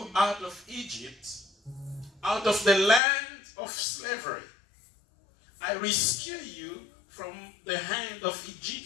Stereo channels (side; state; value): right; drops out; at 3.0 s